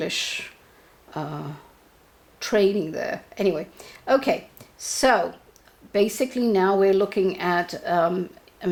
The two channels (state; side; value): identical; both; correlation 1.00